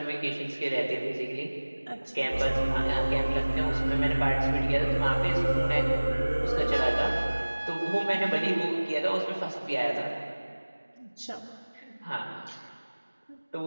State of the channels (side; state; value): both; inverted; correlation -1.00